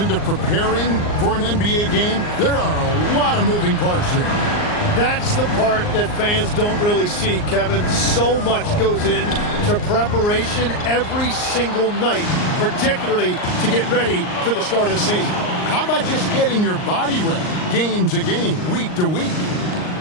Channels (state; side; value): late; right; 39 ms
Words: preparing for an NBA game, there are a lot of moving parts there. That's the part that fans don't really see, Kevin. So much goes into preparation every single night, particularly to get ready for the start of the season. How about just getting your body ready, game to game, week to week?